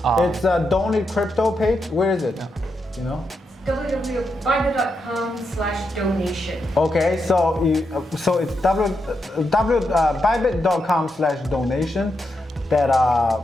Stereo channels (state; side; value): normal; both; correlation 0.84